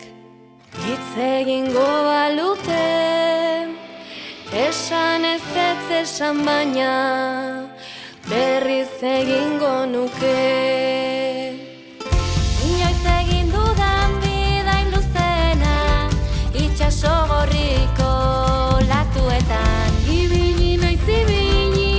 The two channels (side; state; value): both; identical; correlation 1.00